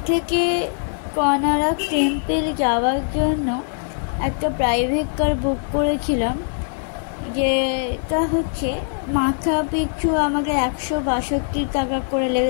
থেকে কোনারক টেম্পল যাওয়ার জন্য একটা প্রাইভেট কার বুক করেছিলাম, যেটা হচ্ছে মাথা পিছু আমাকে 162 টাকা করে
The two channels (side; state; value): right; silent; digital silence